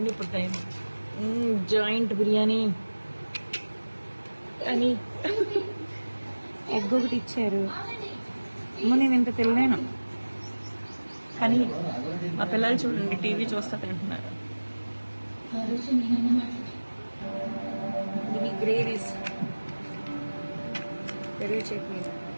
ఇప్పుడు టైం. జాయింట్ బిర్యానీ అని ఎగ్ ఒకటి ఇచ్చారు. నేను ఇంత తినలేను కానీ మా పిల్లలు చూడండి టీవీ చూస్తా తింటున్నారు. ఇవి గ్రేవీస్, పెరుగు చట్నీ.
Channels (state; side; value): inverted; both; correlation -1.00